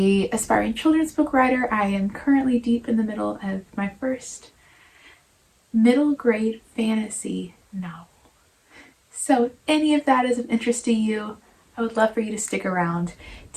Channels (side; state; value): both; identical; correlation 1.00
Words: aspiring children's book writer. I am currently deep in the middle of my first middle grade fantasy novel. So if any of that is of interest to you, I would love for you to stick around.